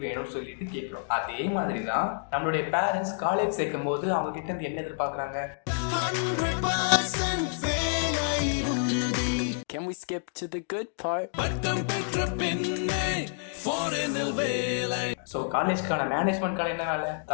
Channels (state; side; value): silent; right; digital silence